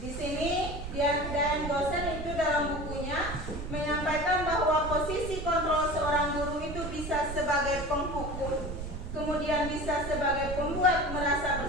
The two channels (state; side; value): noise; right; rumble, 7 dB below the sound